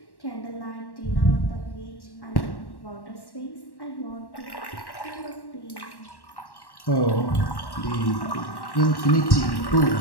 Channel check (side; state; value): right; late; 1.1 ms